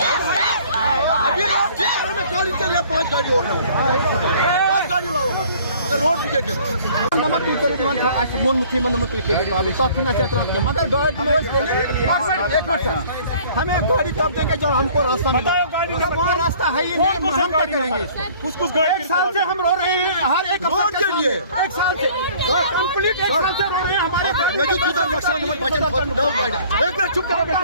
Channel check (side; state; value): both; inverted; correlation -0.53